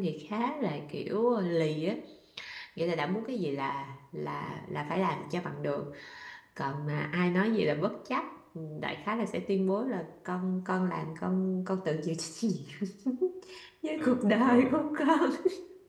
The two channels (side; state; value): both; identical; correlation 1.00